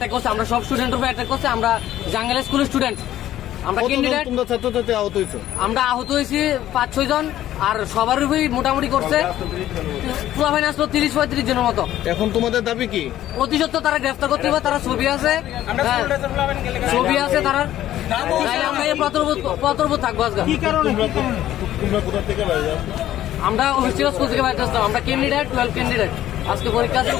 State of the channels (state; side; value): quieter; right; 13.0 dB